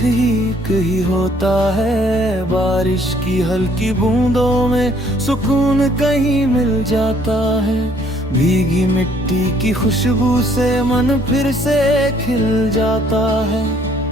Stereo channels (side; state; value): both; normal; correlation 0.63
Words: ही होता है। बारिश की हल्की बूंदों में सुकून कहीं मिल जाता है। भीगी मिट्टी की खुशबू से मन फिर से खिल जाता है।